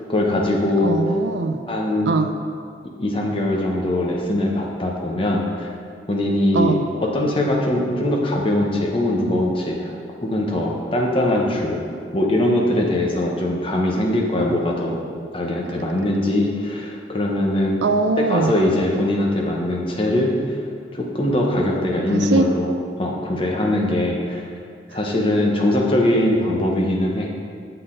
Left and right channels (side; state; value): both; normal; correlation 0.62